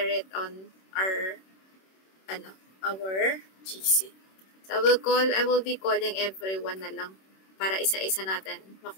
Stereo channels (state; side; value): late; right; 26 ms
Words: it on our GC. So, I will be calling everyone na lang para isa-isa natin